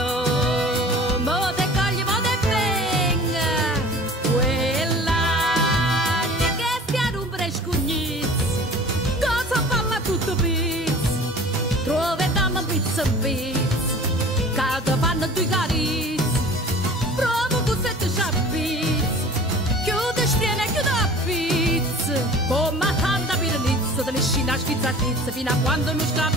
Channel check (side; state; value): both; normal; correlation 0.43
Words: mo te cogli, mo te venga, quella che ti rompere il cucchietto, cosa falla tutto pizza, troviamo pizza in pizza, che ti fanno due carizze, prova questo e tu c'ha pizza, chiude stiene, chiude la pizza, come tanta piranizza, te ne scina schizza pizza, fino a quando non